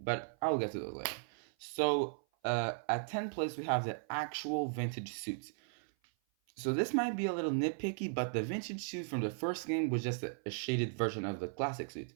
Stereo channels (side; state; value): left; silent; 53 dB below the other